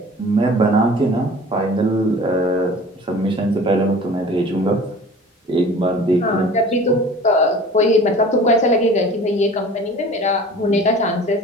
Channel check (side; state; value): both; normal; correlation 0.43